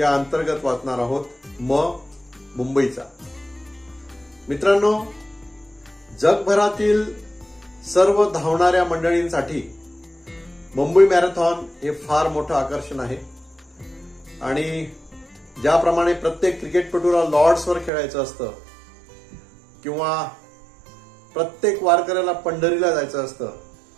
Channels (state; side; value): drops out; left; at 17.9 s